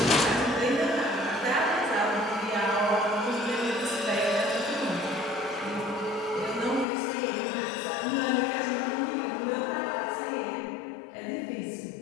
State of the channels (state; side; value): drops out; right; at 6.9 s